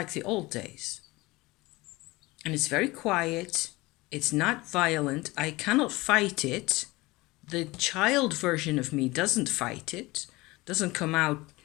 the old days. And it's very quiet. It's not violent. I cannot fight it. The child version of me doesn't fight it, doesn't come out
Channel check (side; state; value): right; quieter; 21.3 dB